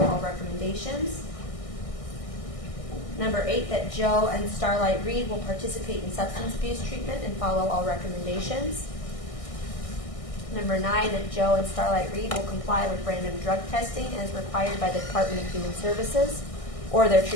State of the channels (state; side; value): late; right; 1.6 ms